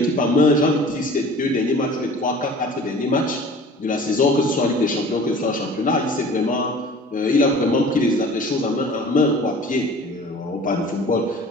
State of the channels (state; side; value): normal; both; correlation 0.44